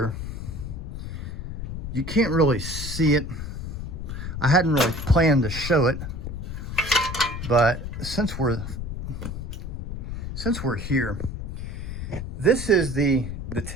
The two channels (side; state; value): left; noise; rumble, 6 dB below the sound